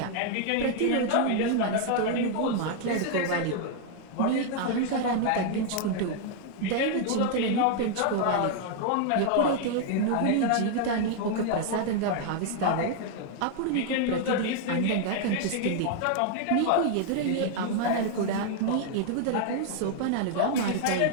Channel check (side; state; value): both; different; correlation 0.00